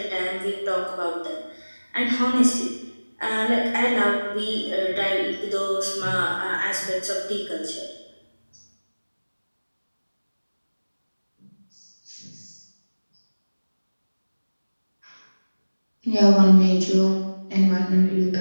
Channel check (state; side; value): inverted; both; correlation -1.00